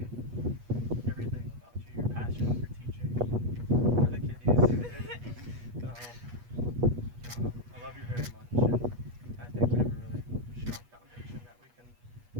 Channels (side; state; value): left; late; 8.3 ms